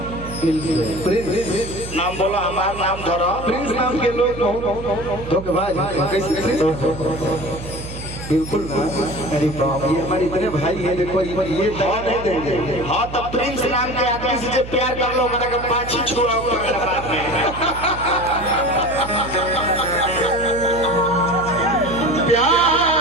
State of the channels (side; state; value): right; noise; hum, 11 dB below the sound